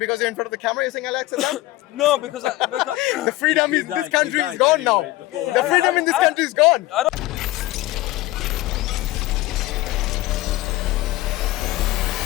you're in front of the camera you're saying Alexa down? No, because The freedom in this country is died gone now. anyway. The freedom in this country is gone.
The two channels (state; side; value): quieter; right; 17.9 dB